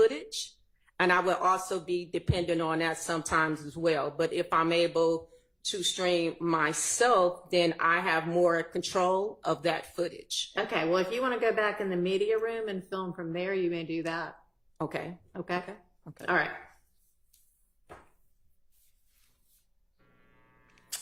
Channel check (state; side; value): identical; both; correlation 1.00